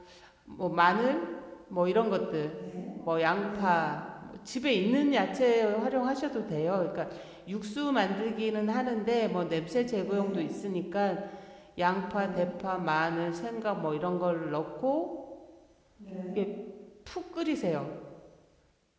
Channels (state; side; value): identical; both; correlation 1.00